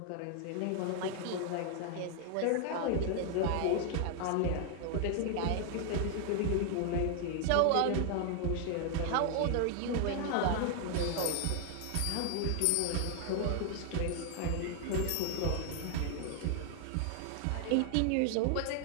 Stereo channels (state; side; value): different; both; correlation 0.00